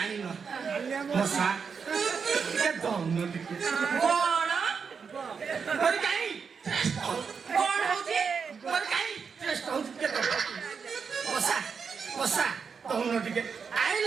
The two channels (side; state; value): left; quieter; 5.9 dB